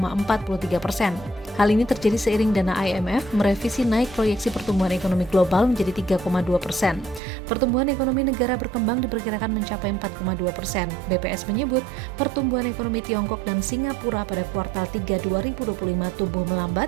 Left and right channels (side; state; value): left; drops out; at 7.2 s